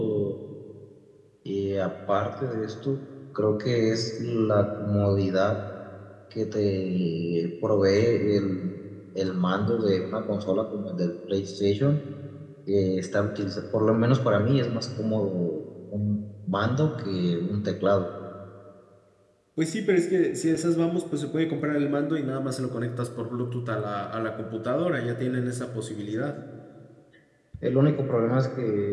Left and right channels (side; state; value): both; identical; correlation 1.00